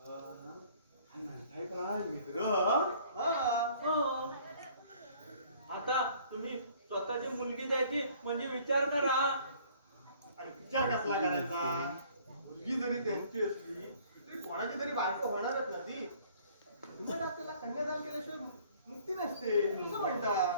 म्हणताय काय मित्र? हो. आता तुम्ही स्वतःची मुलगी द्यायची म्हणजे विचार करा. आणि विचार कसला करायचा? मुलगी जरी त्यांची असली तरी कोणाची तरी बायको होणारच ना ती. तुम्ही त्याला कन्यादान केल्याशिवाय मुक्ती नसते असं म्हणतात.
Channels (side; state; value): both; inverted; correlation -0.56